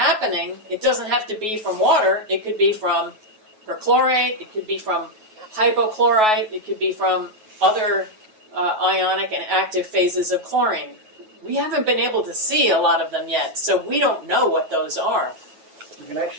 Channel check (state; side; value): late; left; 9.3 ms